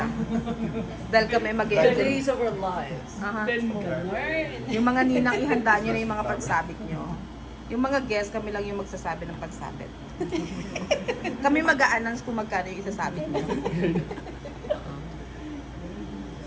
Dahil kami mag-i-enjoy. of our lives. Aha. Yung mga ninang, ihanda nyo na yung mga pansabit nyo. Yung mga guests, kami lang yung magsasabi ng pansabit. Kami mag-a-announce kung magkano yung isasabit nyo.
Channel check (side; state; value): both; identical; correlation 1.00